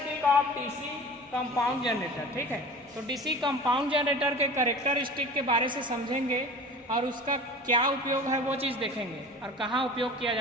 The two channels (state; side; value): normal; both; correlation 0.38